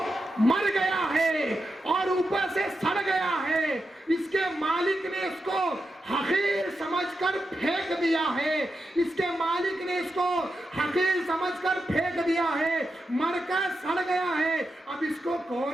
مر گیا ہے اور اوپر سے سڑ گیا ہے، اس کے مالک نے اس کو حقیر سمجھ کر پھینک دیا ہے، اس کے مالک نے اس کو حقیر سمجھ کر پھینک دیا ہے، مر کر سڑ گیا ہے، اب اس کو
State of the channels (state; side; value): normal; both; correlation 0.88